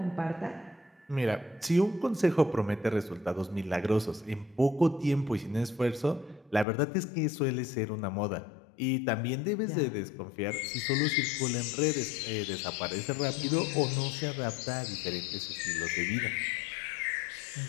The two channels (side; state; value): right; drops out; at 6.7 s